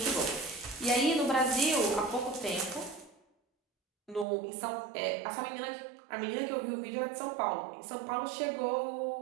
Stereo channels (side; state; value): left; drops out; at 4.2 s